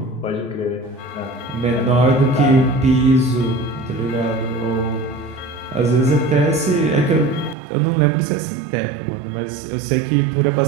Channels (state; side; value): drops out; left; at 7.6 s